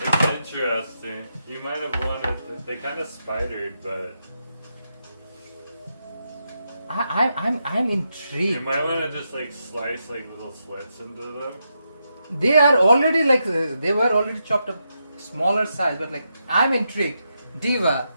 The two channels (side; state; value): both; inverted; correlation -0.84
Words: It's interesting. You might have wanted, they kind of spidered, but I'm you intrigued. might want to just like slice like little slits into them. They are already like they were already chopped up smaller size, but like I'm intrigued. Diva,